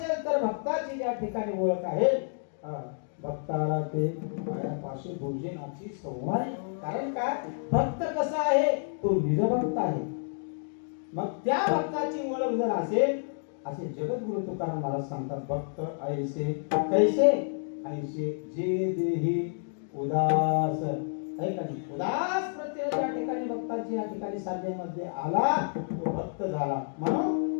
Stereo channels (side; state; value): right; silent; digital silence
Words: तर भक्ताची ज्या ठिकाणी ओळख आहे, भक्ताला ते पायापाशी भोजनाची संवाद. कारण काय, भक्त कसा आहे? तो निजभक्त आहे. मग त्या भक्ताची ओळख जर असेल, असे जगद्गुरु तुकाराम महाराज सांगतात, भक्त ऐसे कैसे, ऐसे जे देही उदास. उदास प्रत्यय ज्या ठिकाणी भक्ताची या ठिकाणी साधनेमध्ये आला तो भक्त झाला.